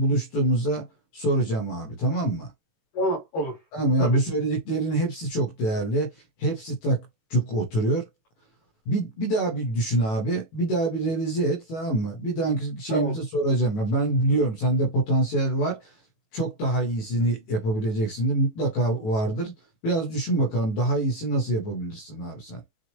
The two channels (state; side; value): late; right; 18 ms